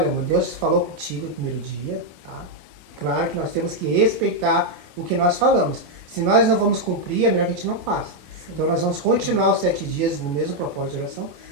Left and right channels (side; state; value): left; late; 28 ms